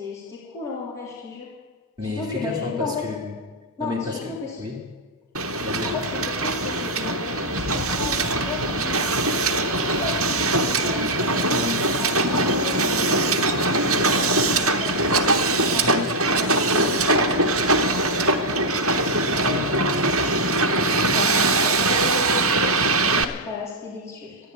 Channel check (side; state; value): both; normal; correlation -0.03